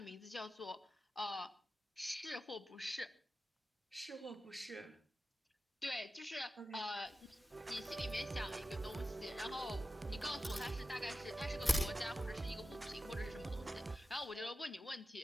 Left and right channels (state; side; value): normal; both; correlation 0.93